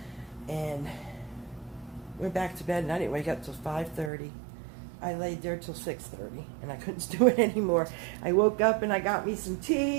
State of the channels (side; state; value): left; drops out; at 4.1 s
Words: and went back to bed, and I didn't wake up till 5:30. I laid there till 6:30, and I couldn't do it anymore. I woke up, and I got me some